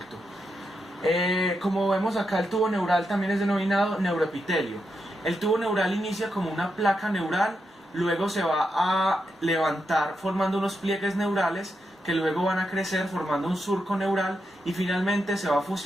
Como vemos acá, el tubo neural también es denominado neuroepitelio. El tubo neural inicia como una placa neural, luego se va a levantar formando unos pliegues neurales que luego van a crecer formando un surco neural y finalmente se va a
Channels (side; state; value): both; normal; correlation 0.84